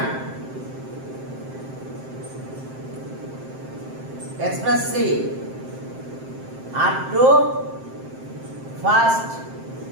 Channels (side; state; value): left; late; 7.6 ms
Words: express c up to first